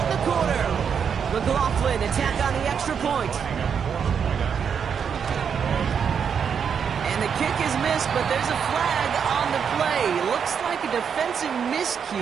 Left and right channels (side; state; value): left; quieter; 7.1 dB